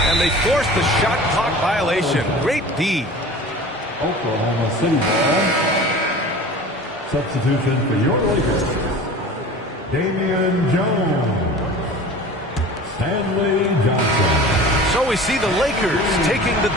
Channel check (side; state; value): both; normal; correlation 0.39